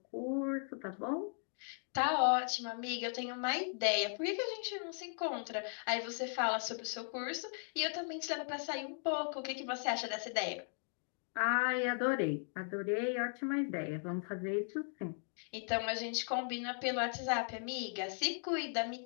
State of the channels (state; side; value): silent; right; 53 dB below the other